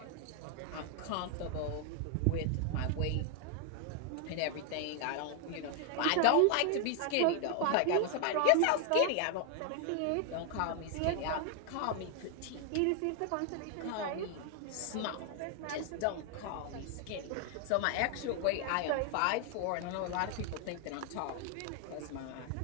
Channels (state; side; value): different; both; correlation 0.00